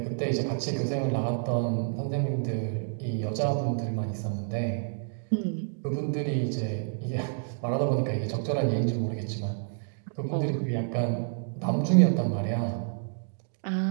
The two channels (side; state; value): left; silent; digital silence